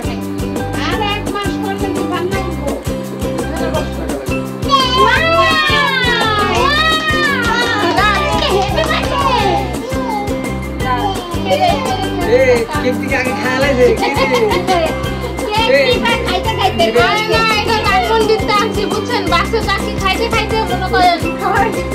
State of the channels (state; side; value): identical; both; correlation 1.00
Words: বুঝছেন বাচ্চা চাকরি খাইতে খাইতে